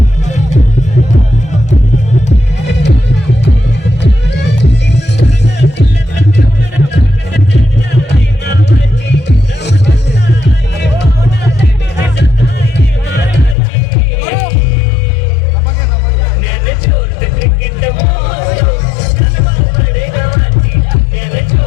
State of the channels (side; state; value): right; drops out; at 13.6 s